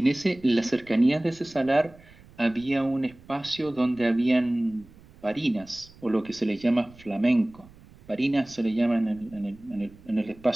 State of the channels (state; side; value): noise; right; rumble, 24 dB below the sound